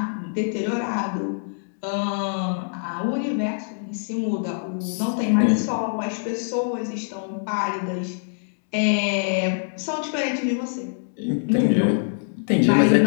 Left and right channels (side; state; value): right; silent; digital silence